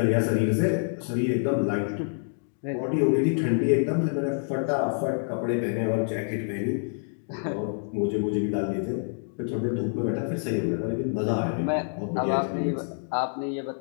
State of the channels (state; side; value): silent; right; digital silence